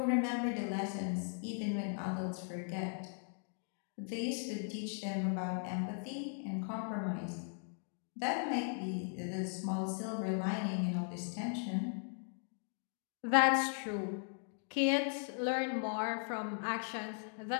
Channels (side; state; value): right; silent; 52 dB below the other